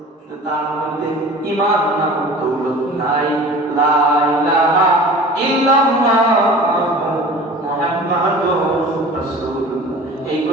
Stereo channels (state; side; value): normal; both; correlation 0.41